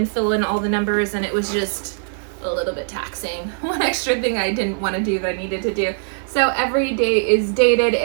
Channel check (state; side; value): silent; left; 65 dB below the other